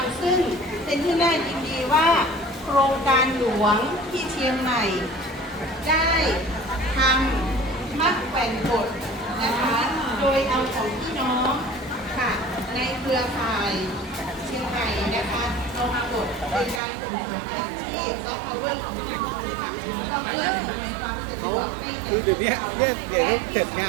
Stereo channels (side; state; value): left; drops out; at 16.8 s